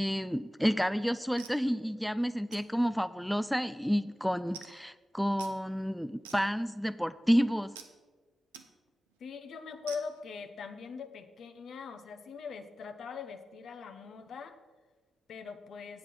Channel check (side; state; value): both; normal; correlation 0.98